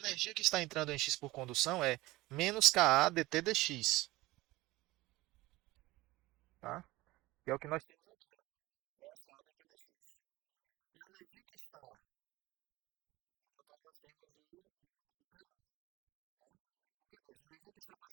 que está entrando em X por condução é menos Ka dt dx. Tá? Que é o que nós temos aqui. Essa é a dt dx. E a energia que está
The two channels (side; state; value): left; quieter; 19.3 dB